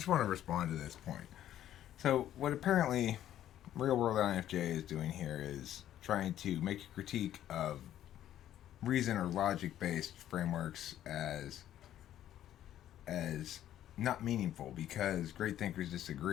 want to respond to this point. So, what apparently Real World INFJ is doing here is trying to make a critique of reason or logic-based frameworks as not meaningful because great thinkers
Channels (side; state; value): right; quieter; 11.8 dB